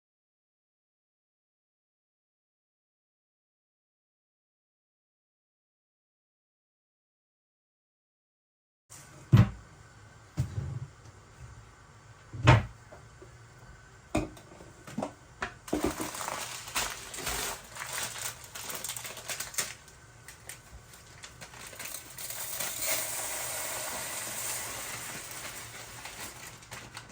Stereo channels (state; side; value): identical; both; correlation 1.00